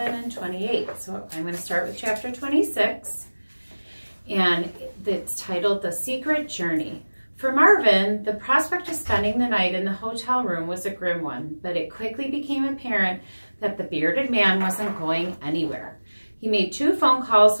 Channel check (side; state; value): both; inverted; correlation -1.00